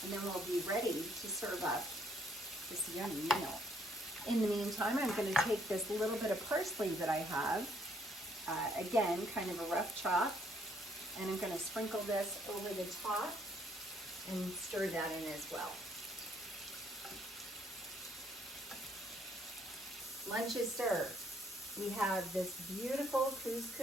and then we'll be ready to serve up this yummy meal. In the meantime, I'm gonna take this little bit of parsley that I have, again, kind of a rough chop, and I'm gonna sprinkle this over the top and stir that in as well. Lunch is served. We have this beautiful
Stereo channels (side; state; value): both; normal; correlation 0.67